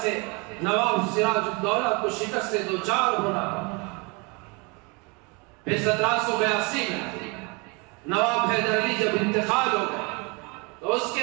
سے نواب سراج الدولہ کو شکست سے دوچار ہونا پڑا۔ پھر 1782 میں نواب حیدر علی جب انتقال ہو گئے تو اس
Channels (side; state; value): left; quieter; 29.8 dB